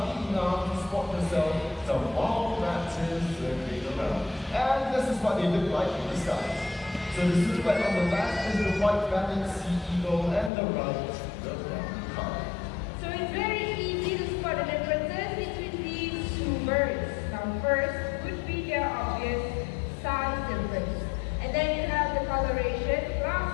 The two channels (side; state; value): right; drops out; at 10.5 s